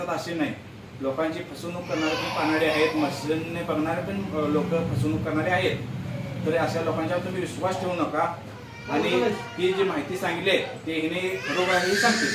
असे नाही. लोकांची फसवणूक करणारे पण पानाडे आहेत, मशीनने बघणारे पण लोक फसवणूक करणारे आहेत. तर अशा लोकांच्यावर तुम्ही विश्वास ठेवू नका. आणि ही जी माहिती सांगितली ते हिने खरोखर सांगते.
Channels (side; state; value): both; identical; correlation 1.00